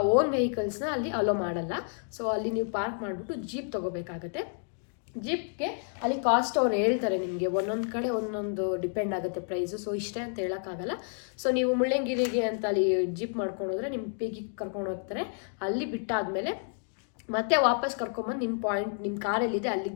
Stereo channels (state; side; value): silent; right; 58 dB below the other